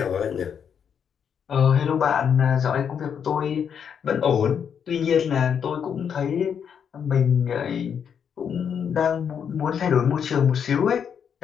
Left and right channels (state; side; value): quieter; right; 7.6 dB